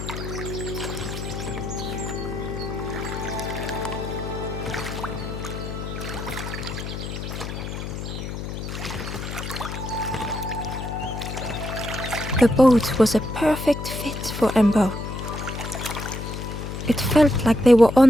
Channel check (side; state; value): left; noise; hum, 6 dB below the sound